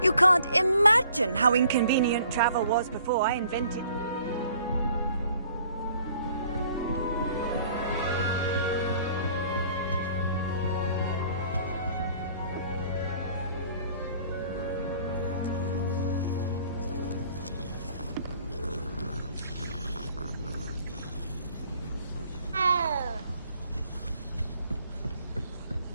You can't imagine how inconvenient travel was before I invented it.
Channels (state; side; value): inverted; both; correlation -0.57